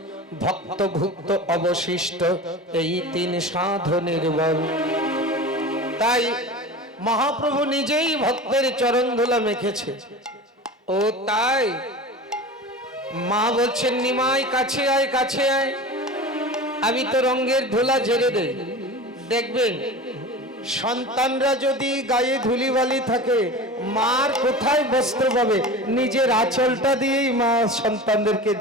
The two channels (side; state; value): both; normal; correlation 0.33